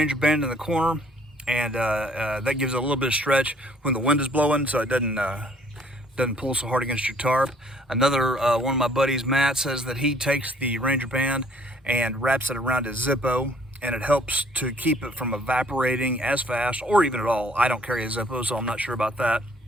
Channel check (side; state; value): both; normal; correlation 0.60